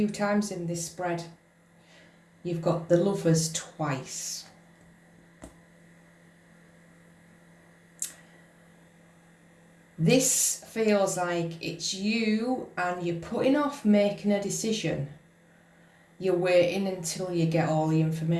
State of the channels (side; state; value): both; identical; correlation 1.00